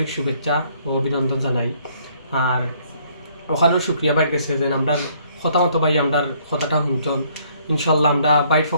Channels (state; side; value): inverted; both; correlation -0.64